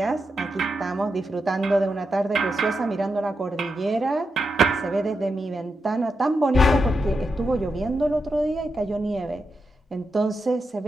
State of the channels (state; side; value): normal; both; correlation 0.86